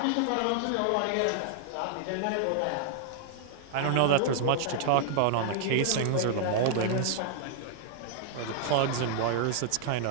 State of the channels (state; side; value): different; both; correlation -0.01